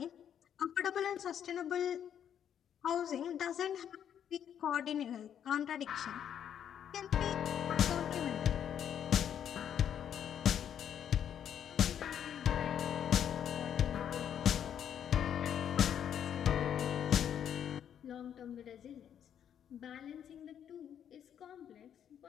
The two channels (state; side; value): quieter; right; 9.2 dB